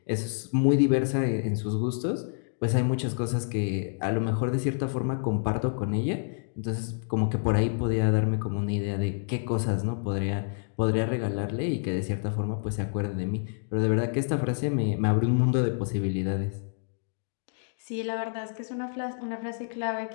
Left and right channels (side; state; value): right; silent; digital silence